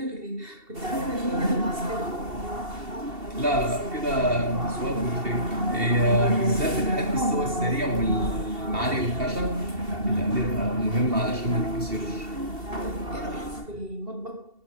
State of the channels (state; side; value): late; left; 2.7 ms